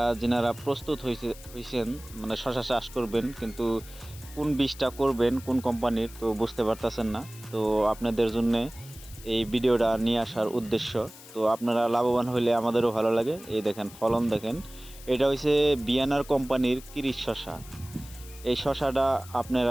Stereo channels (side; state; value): left; noise; hiss, 18 dB below the sound